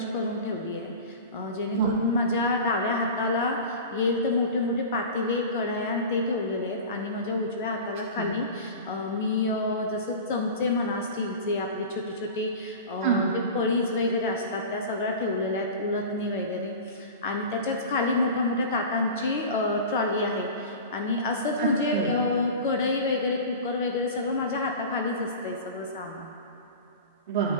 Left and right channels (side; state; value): both; inverted; correlation -0.33